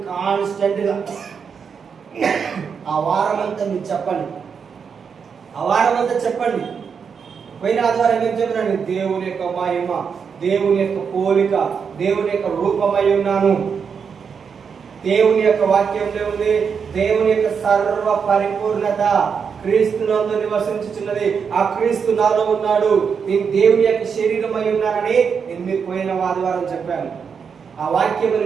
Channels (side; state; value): left; quieter; 6.4 dB